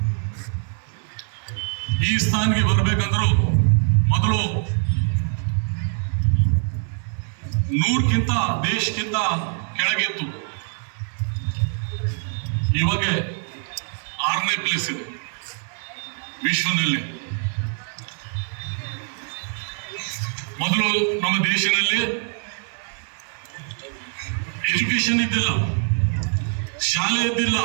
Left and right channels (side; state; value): left; silent; 55 dB below the other